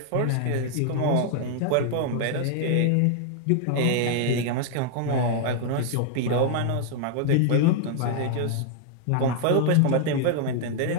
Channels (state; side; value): different; both; correlation 0.00